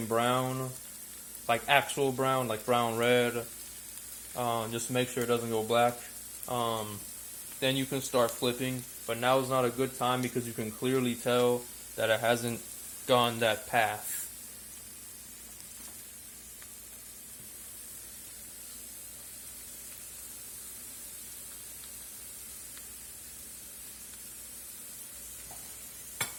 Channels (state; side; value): identical; both; correlation 1.00